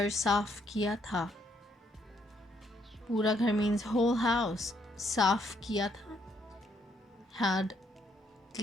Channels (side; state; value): both; normal; correlation 0.72